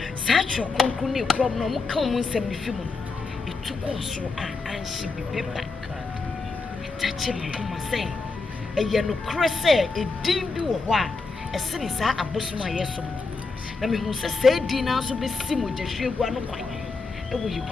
Such a concrete problem come 70 it took us and she be paper. Touching my say, a yellow cressy, a dim do a while, as soon as I boss my yes. I mean, who say dinner so be similar to she one quite. And will you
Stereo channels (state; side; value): quieter; right; 4.0 dB